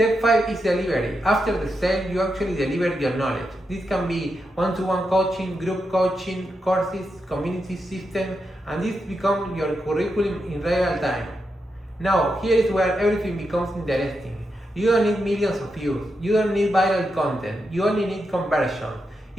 5 is delivery. After the sale, you actually deliver your knowledge. This can be one-to-one coaching, group coaching, courses, community system, and this becomes your curriculum in real time. Now, here is where everything becomes interesting. You don't need millions of views. You don't need viral content. You only need conversion.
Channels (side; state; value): both; normal; correlation 0.86